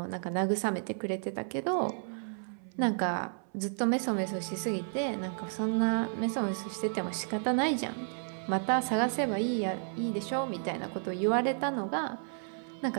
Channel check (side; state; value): left; silent; 56 dB below the other